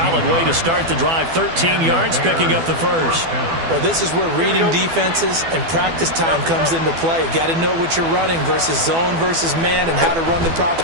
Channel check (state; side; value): late; left; 12 ms